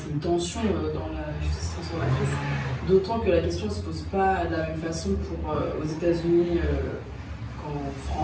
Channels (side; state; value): both; identical; correlation 1.00